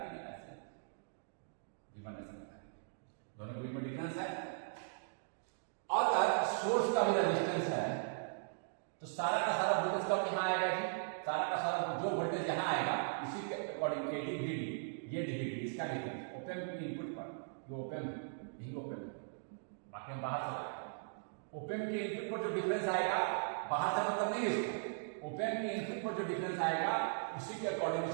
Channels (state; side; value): silent; left; digital silence